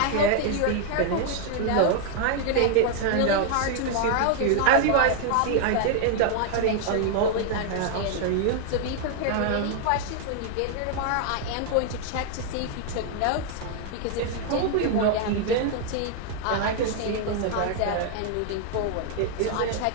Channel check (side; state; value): both; different; correlation 0.00